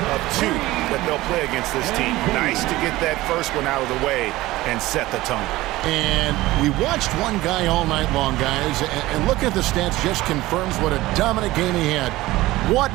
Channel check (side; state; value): left; quieter; 17.9 dB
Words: 2 that they'll play against this team. Nice to get that first one out of the way and set the tone. And we watched one guy all night long, guys, and look at the stats just confirms what a dominant game he had. What